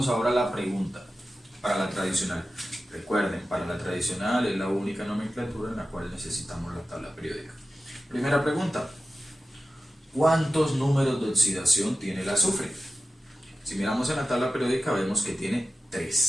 ahora a la pregunta para la tradicional. Recuerden, para la tradicional es la única nomenclatura en la cual necesitamos la tabla periódica. Primera pregunta. ¿Cuántos números de oxidación tiene el azufre? Si miramos en la tabla periódica vemos que tiene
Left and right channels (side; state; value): both; normal; correlation 0.94